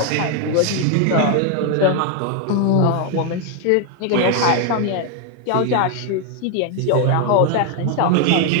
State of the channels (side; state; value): both; different; correlation 0.00